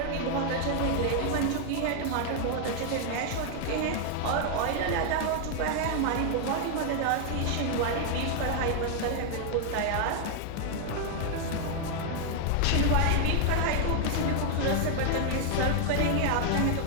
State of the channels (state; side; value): different; both; correlation 0.00